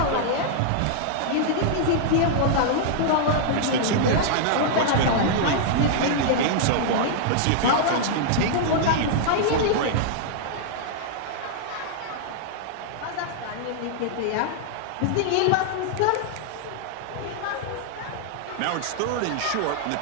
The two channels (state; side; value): different; both; correlation -0.01